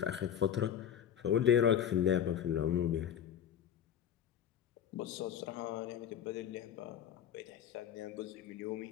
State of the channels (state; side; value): quieter; right; 9.4 dB